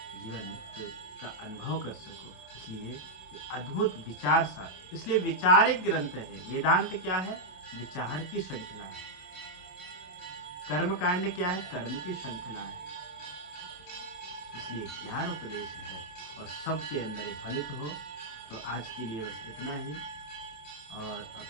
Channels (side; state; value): right; late; 28 ms